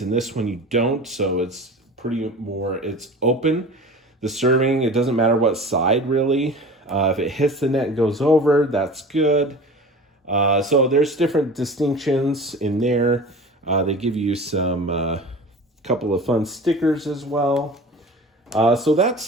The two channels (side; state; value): both; normal; correlation 0.37